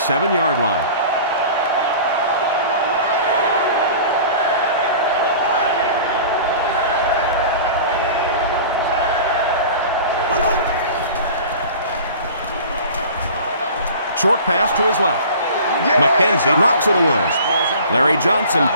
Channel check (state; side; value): inverted; both; correlation -0.41